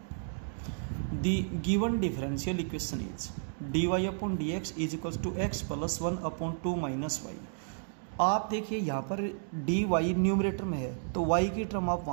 the given differential equation is dy upon dx is equal to x plus 1 upon 2 minus y। आप देखिए यहाँ पर dy न्यूमरेटर में है, तो y की टर्म आप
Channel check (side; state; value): left; silent; digital silence